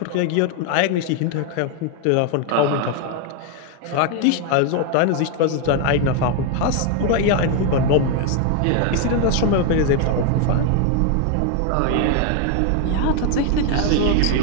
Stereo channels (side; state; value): both; different; correlation 0.01